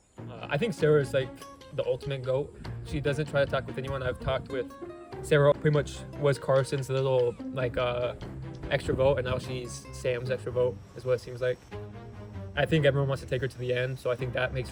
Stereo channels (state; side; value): identical; both; correlation 1.00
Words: I think Sarah's the ultimate GOAT. She doesn't try to talk with anyone. I've talked with Sarah, pretty much was Carson's little extra vote, and now she's Sam's extra vote is what it seems like. I think everyone wants to take her to the end, so I think that makes